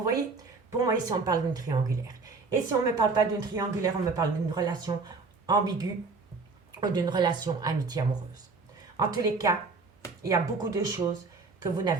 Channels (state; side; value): quieter; left; 4.2 dB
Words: voyez? Pour moi, ici, on parle d'une triangulaire. Et si on ne me parle pas d'une triangulaire, on me parle d'une relation ambiguë ou d'une relation amitié-amoureuse. En tous les cas, il y a beaucoup de choses que vous